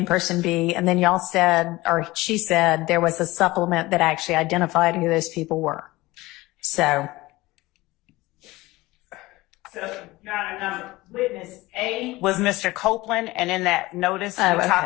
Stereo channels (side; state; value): right; quieter; 19.7 dB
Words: person B. And then y'all said, or she said, there was a supplement that actually identified who those people were. So. So, Your Honor, witness A was Mr. Copeland, and in that notice, we okay.